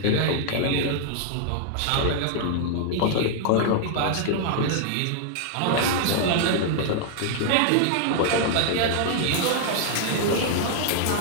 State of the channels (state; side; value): different; both; correlation 0.00